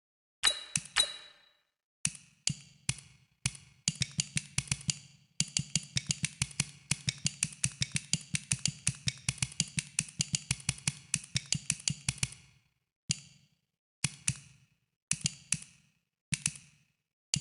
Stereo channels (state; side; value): normal; both; correlation 0.92